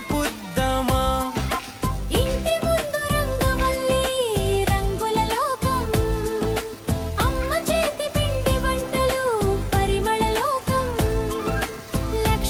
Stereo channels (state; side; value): identical; both; correlation 1.00